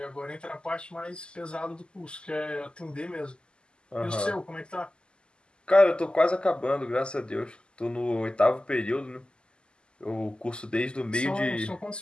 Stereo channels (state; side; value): late; right; 0.049 ms